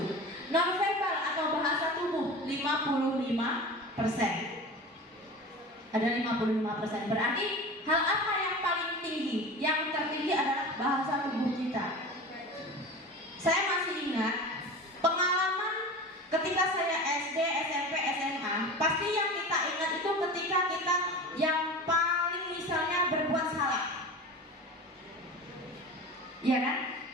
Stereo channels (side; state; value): both; normal; correlation 0.33